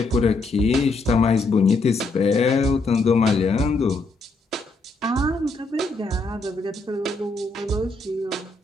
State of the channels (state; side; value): quieter; right; 3.3 dB